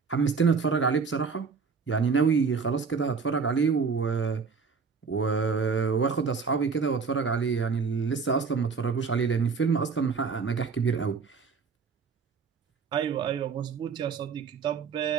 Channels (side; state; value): left; quieter; 5.3 dB